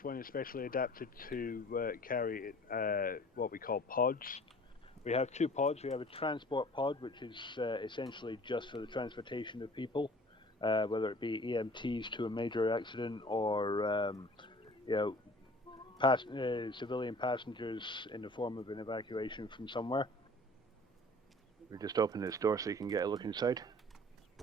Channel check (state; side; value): normal; both; correlation 0.48